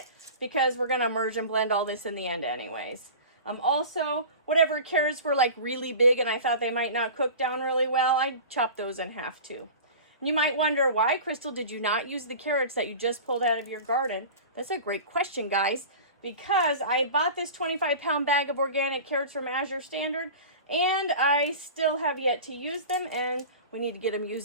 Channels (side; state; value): both; inverted; correlation -0.36